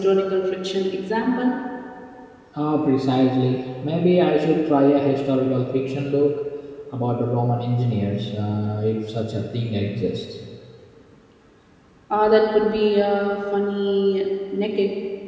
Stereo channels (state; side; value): identical; both; correlation 1.00